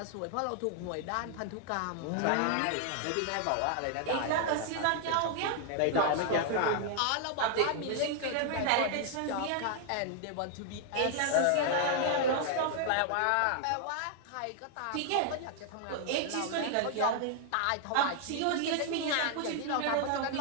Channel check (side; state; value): both; different; correlation 0.00